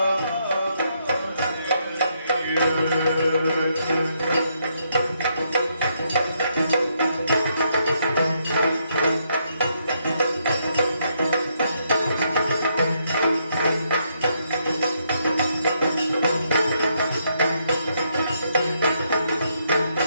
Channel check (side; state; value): both; inverted; correlation -0.76